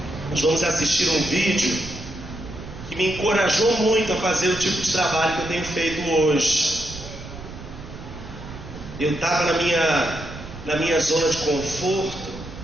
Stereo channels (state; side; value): noise; right; rumble, 13 dB below the sound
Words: Nós vamos assistir um vídeo que me encorajou muito a fazer o tipo de trabalho que eu tenho feito hoje. Eu estava na minha zona de conforto,